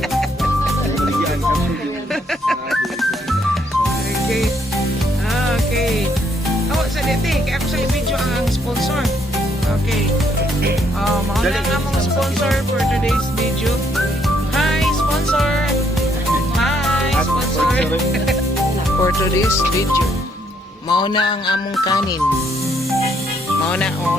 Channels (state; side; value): normal; both; correlation 0.71